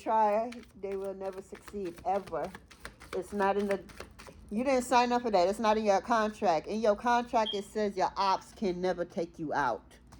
they will never succeed, ever. It's not in the... You didn't sign up for that. It's not in your contract. In your contract, it says your ops can never take you out.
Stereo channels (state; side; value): identical; both; correlation 1.00